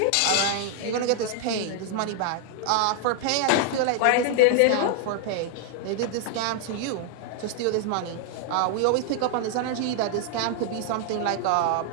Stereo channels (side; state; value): both; different; correlation 0.00